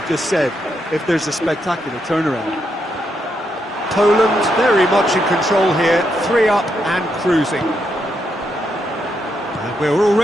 just said if there's a spectacular turnaround. Poland very much in control here, 3 up and cruising. And we're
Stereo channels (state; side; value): normal; both; correlation 0.80